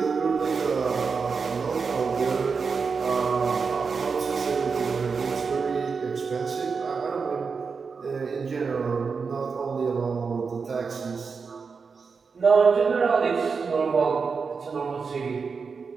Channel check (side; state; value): left; quieter; 5.2 dB